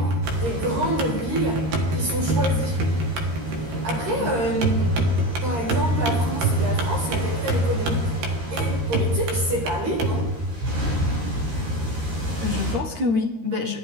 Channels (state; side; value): late; left; 13 ms